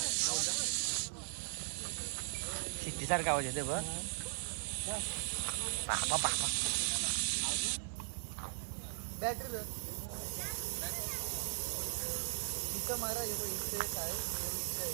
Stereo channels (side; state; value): left; silent; 52 dB below the other